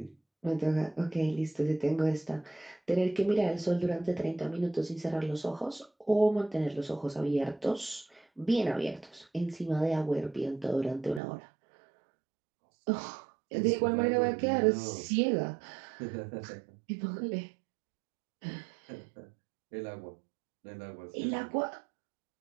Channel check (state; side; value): drops out; left; at 11.2 s